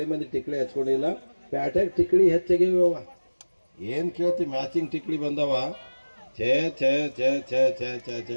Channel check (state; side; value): inverted; both; correlation -1.00